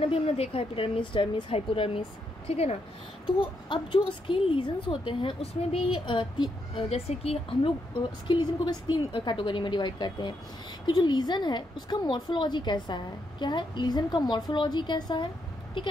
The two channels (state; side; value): normal; both; correlation 0.79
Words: अभी हमने देखा है एपिडर्मिस, डर्मिस, हाइपोडर्मिस, ठीक है ना। तो अब जो स्किन लीजन्स होते हैं उसमें भी जैसे कि हम लोग स्किन लीजन को बस 3 कैटेगरी में डिवाइड करते हैं कि जो लीजन है उसका मॉर्फोलॉजी कैसा है, क्या है लीजन का मॉर्फोलॉजी कैसा है, ठीक